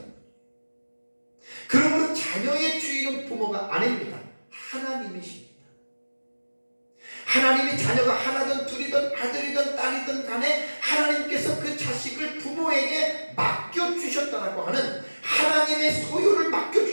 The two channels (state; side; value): inverted; both; correlation -1.00